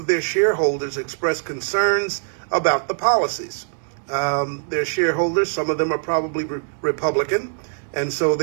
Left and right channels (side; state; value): left; silent; digital silence